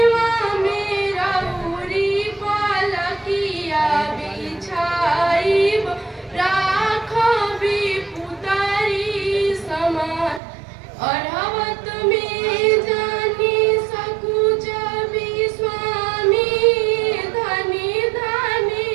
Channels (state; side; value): drops out; left; at 10.4 s